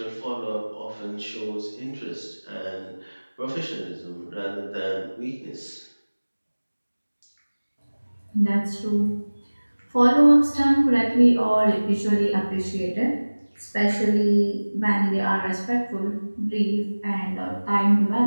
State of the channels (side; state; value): both; inverted; correlation -1.00